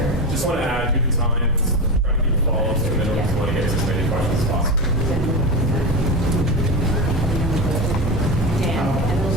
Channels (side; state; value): both; normal; correlation 0.20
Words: Just want to add, due to time, try to keep the follow-ups to a minimum, because we want to get to as many questions as possible. Dan, and those